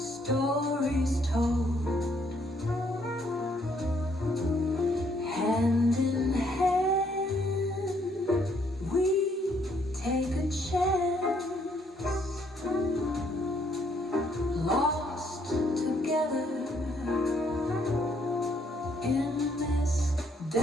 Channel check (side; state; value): both; normal; correlation 0.69